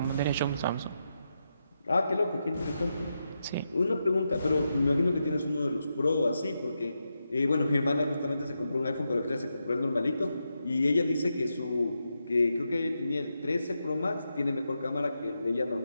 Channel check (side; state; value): both; inverted; correlation -0.86